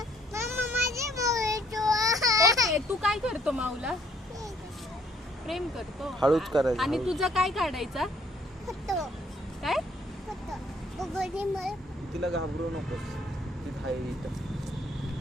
ओके, तू काय करतो माऊला? प्रेम करतो. हळूच करायचं. आणि हळूच. तुझा काय काढायचा? काय? तिला घाबरू नकोस. ती आहे इथं.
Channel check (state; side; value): normal; both; correlation 0.65